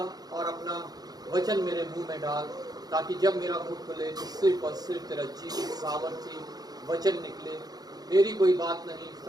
और अपना वचन मेरे मुंह में डाल, ताकि जब मेरा मुंह खुले तो सिर्फ और सिर्फ तेरा जीवित सामर्थ्य वचन निकले। मेरी कोई बात नहीं,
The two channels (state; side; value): late; left; 0.19 ms